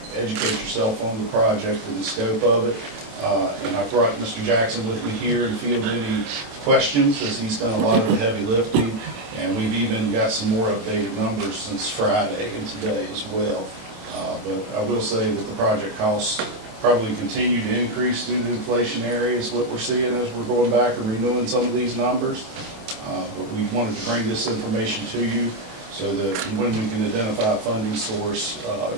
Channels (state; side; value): late; left; 27 ms